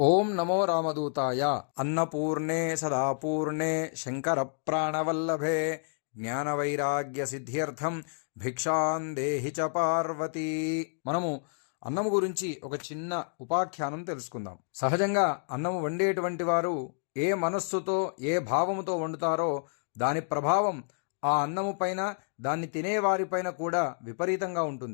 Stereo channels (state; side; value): silent; right; digital silence